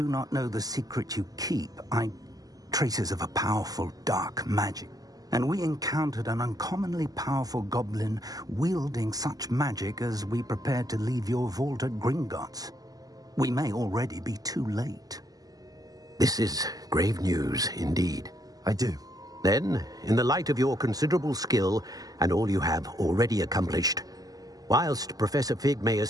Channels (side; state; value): left; late; 0.18 ms